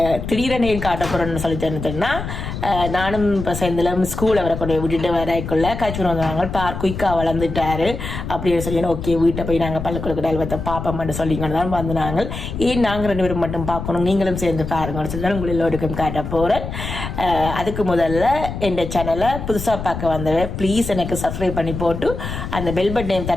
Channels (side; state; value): left; noise; rumble, 7 dB below the sound